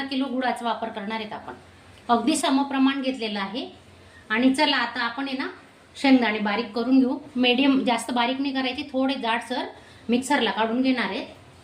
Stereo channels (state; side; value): identical; both; correlation 1.00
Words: किलो गुळाचा वापर करणार आहेत आपण. अगदी समप्रमाण घेतलेलं आहे. आणि चला आता आपण आहे ना शेंगदाणे बारीक करून घेऊ. मीडियम, जास्त बारीक नाही करायचे, थोडे जाडसर मिक्सरला काढून घेणार आहेत.